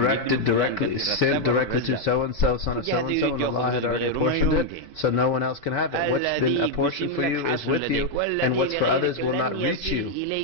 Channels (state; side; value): late; right; 4.8 ms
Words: sent directly to so-and-so, son of so-and-so, and Allah had already apportioned it, so no one else can have it. What's been apportioned for you is with you, and what's for others will not reach you.